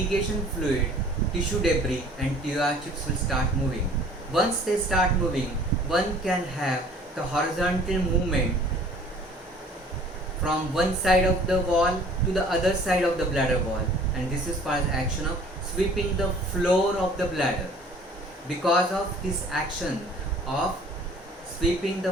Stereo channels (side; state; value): both; normal; correlation 0.52